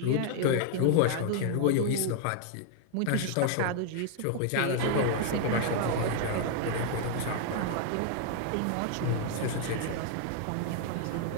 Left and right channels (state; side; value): different; both; correlation 0.00